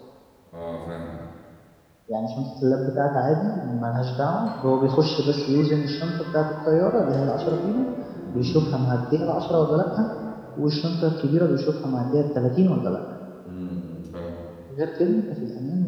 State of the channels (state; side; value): identical; both; correlation 1.00